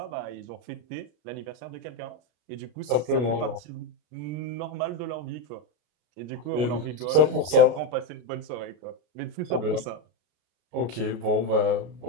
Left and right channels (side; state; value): left; late; 33 ms